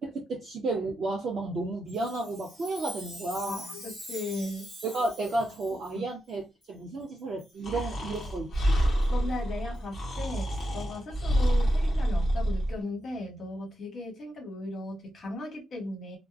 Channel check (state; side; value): normal; both; correlation 0.86